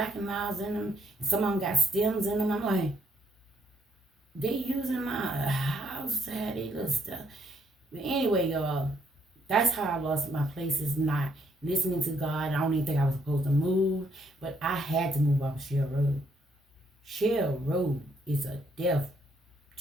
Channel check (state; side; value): normal; both; correlation 0.71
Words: and Milds in them, and some of them got stems in them. I'm like, they using my house to have their little stuff. But anyway, y'all, that's how I lost my place, is not listening to God. I don't even think I was supposed to move, but I had to move off of Shell Road. Shell Road is a death